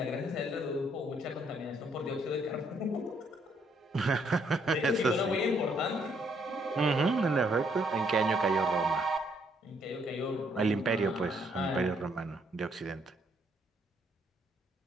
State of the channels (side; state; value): both; normal; correlation 0.70